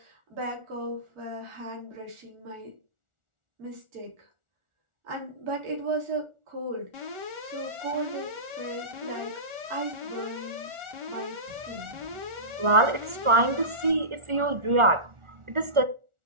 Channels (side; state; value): left; late; 1.4 ms